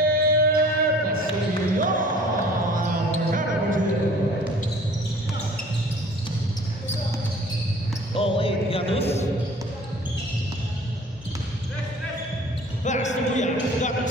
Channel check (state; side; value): normal; both; correlation 0.50